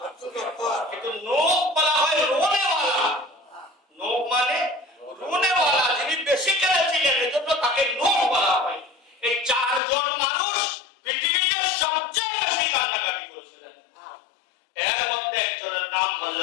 আব্দুল গাফফার, কিন্তু নূহ বলা হয় রোনেওয়ালা। নূহ মানে রোনেওয়ালা, যিনি বেশি কেঁদেছিলেন, এজন্য তাকে নূহ বলা হয়। এই চারজন মানুষ পৃথিবীতে সবচেয়ে বেশি কান্নাকাটি করেছিলেন। এর মধ্যে একজনের নাম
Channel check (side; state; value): right; drops out; at 9.8 s